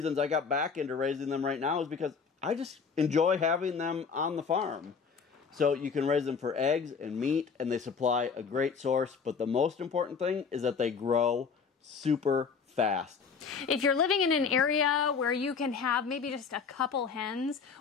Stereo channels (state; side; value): quieter; right; 5.7 dB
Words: I got back into raising them right now is because I just enjoy having them on the farm. So you can raise them for eggs and meat, and they supply a great source. But the most important thing is that they grow super fast. If you're living in an area where you can have maybe just a couple hens,